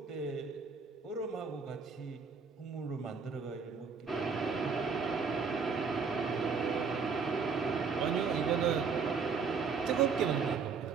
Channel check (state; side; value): quieter; left; 5.4 dB